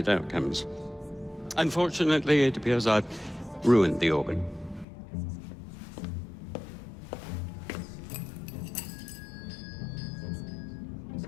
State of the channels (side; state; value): right; drops out; at 4.9 s